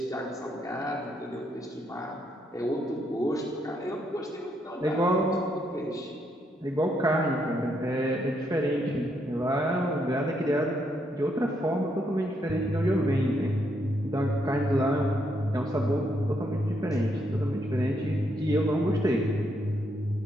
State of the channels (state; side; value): normal; both; correlation 0.76